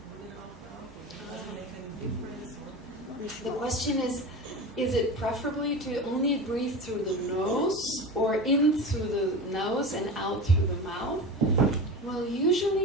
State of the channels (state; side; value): normal; both; correlation 0.28